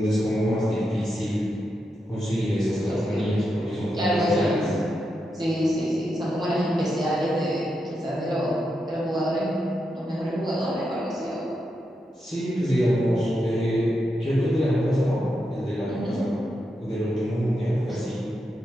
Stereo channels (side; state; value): both; normal; correlation 0.85